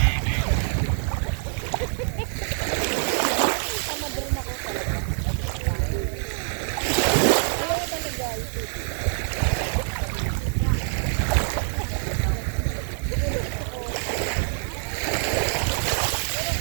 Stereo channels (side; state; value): left; silent; digital silence